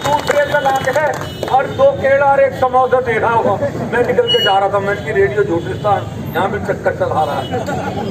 का लाके है और 2 केला और 1 समोसा दे रहा होगा, मैं निकल के जा रहा था, मैं की रेडियो झूठिस्तान यहाँ भी चक्कर चला रहा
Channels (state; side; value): identical; both; correlation 1.00